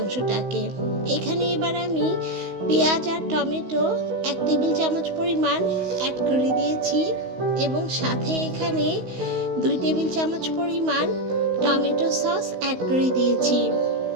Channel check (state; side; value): late; left; 16 ms